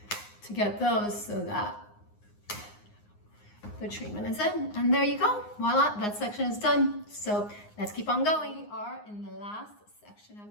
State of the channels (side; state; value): right; late; 9.7 ms